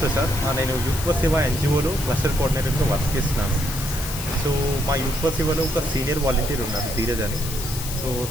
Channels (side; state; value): left; noise; hiss, 8 dB below the sound